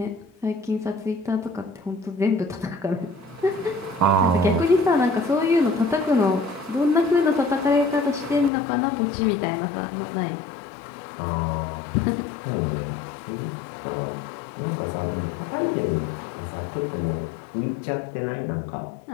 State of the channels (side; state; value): right; drops out; at 8.5 s